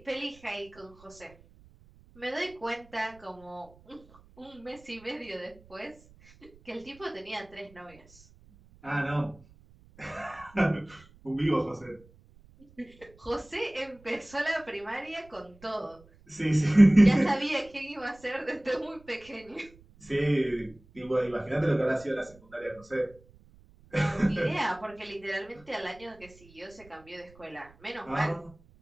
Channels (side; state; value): right; noise; rumble, 25 dB below the sound